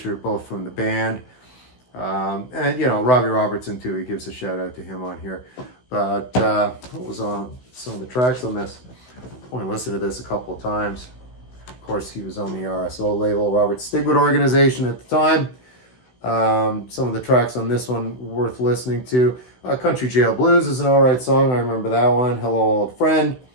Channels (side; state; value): right; late; 16 ms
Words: both from the band. And, you know, Robbie Robertson, too. He gives a shout out to him on here. But what was on some of the tracks on this? I only listened to this a couple of times. Of course, he was on the RSO label, Robert Stigwood organization at the time. Some of the tracks on this one worth listening to. Country Jail Blues is an alright song. I remember that one. Hello, Old Friend.